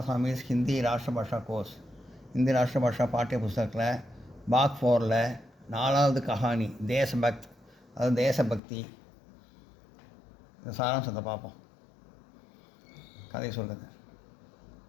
Hindi Rashtrabhasha course. Hindi Rashtrabhasha பாட்டிய புஸ்தகத்தில் பாக் 4ல் 4வது கஹானி தேசபக்த், அதாவது தேசபக்தி. இந்த சாராம்சத்தை பார்ப்போம். கதை சொல்கிறது.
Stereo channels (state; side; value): drops out; right; at 8.6 s